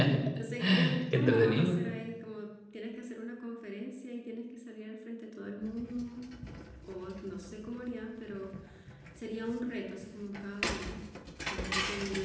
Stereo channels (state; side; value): identical; both; correlation 1.00